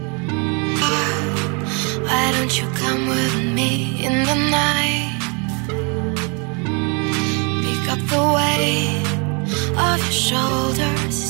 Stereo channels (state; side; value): quieter; left; 33.9 dB